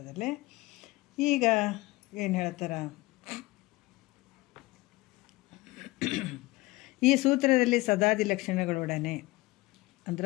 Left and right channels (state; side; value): quieter; right; 20.7 dB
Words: ಈಗ ಏನು ಹೇಳ್ತಾರ, ಈ ಸೂತ್ರದಲ್ಲಿ ಸದಾದಿ ಲಕ್ಷಣಗಳೊಡನೆ